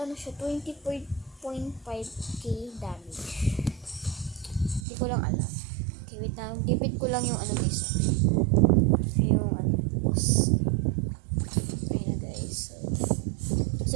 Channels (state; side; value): drops out; left; at 4.9 s